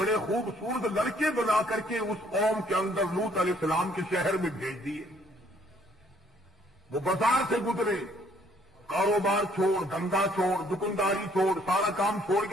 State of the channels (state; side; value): normal; both; correlation 0.64